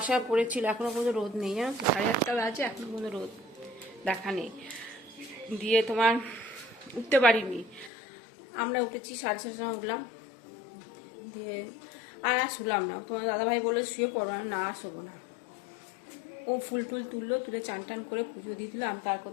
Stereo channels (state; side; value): drops out; right; at 7.9 s